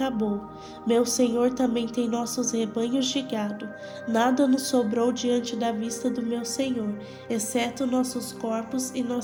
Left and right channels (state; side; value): identical; both; correlation 1.00